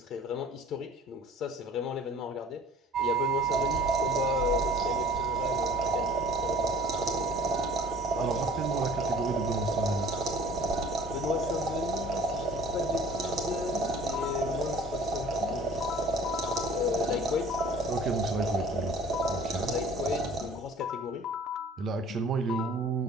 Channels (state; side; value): normal; both; correlation 0.49